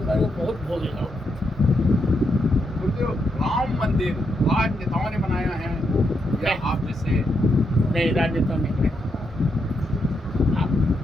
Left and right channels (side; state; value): both; normal; correlation 0.81